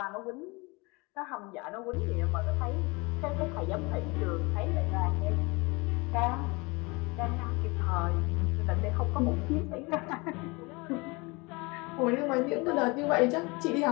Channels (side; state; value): right; quieter; 26.4 dB